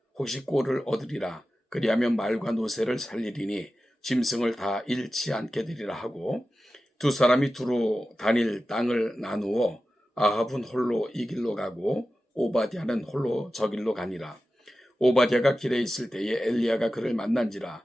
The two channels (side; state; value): both; normal; correlation 0.94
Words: 혹시 꼴을 얻으리라. 그리하면 말과 노새를 살리리니 짐승을 다 잃지 않게 되리라 하고 두 사람이 두루 다닐 땅을 나누어 아합은 홀로 이 길로 가고 오바댜는 홀로 저 길로 가니라. 오바댜가 길에 있을 때에 엘리야가 그를 만난지라.